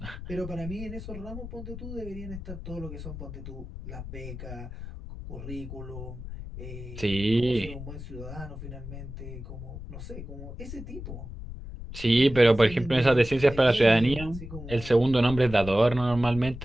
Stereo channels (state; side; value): noise; left; rumble, 10 dB below the sound